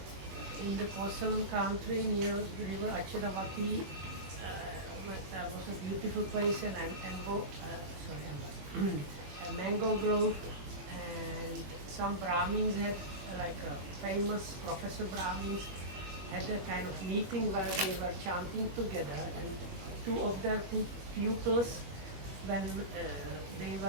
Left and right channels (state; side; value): late; left; 21 ms